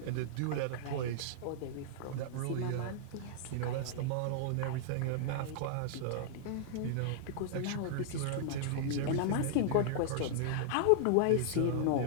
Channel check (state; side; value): different; both; correlation -0.01